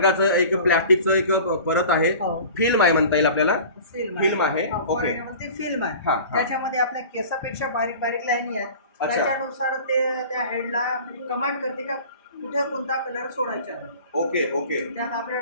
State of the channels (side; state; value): both; inverted; correlation -0.41